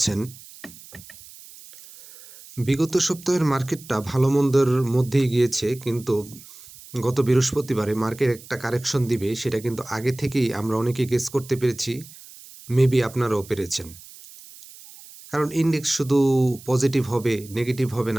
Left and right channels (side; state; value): right; noise; hiss, 19 dB below the sound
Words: বিগত সপ্তাহের মার্কেটটা ভালো মন্দের মধ্যেই গিয়েছে, কিন্তু গত বৃহস্পতিবারে মার্কেট একটা কারেকশন দিবে সেটা কিন্তু আগে থেকেই আমরা অনেকে গেস করতে পেরেছি। মেবি আপনারাও পেরেছেন, কারণ ইন্ডেক্স শুধু পজিটিভ হবে নেগেটিভ হবে